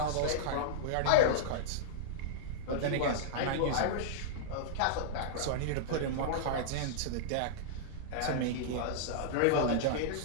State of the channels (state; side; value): different; both; correlation -0.02